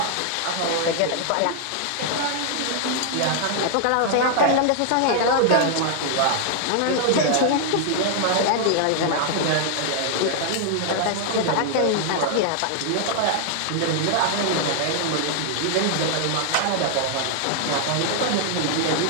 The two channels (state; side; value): different; both; correlation 0.00